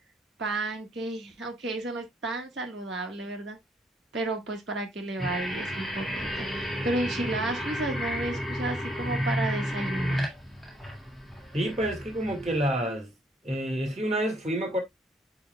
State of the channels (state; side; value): normal; both; correlation 0.68